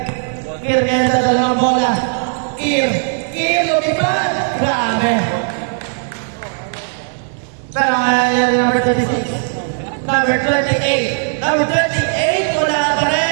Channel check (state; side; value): silent; left; digital silence